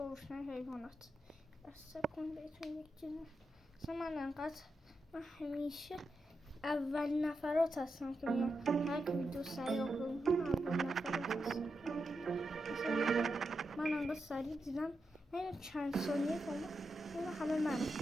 روشنای حیوانات بسته کن بهتون یک چیزی اصلا من همیشه اول نفرات هستم که میام هر ویدیو سریع آپلود کنم اول نفرات هستم من انقدر سریع دیدم این چند ثانیه کنم این همه من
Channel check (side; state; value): both; normal; correlation 0.87